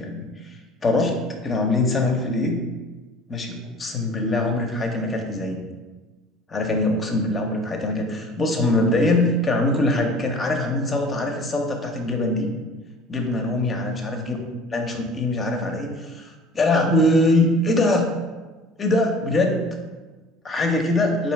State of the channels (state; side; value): normal; both; correlation 0.45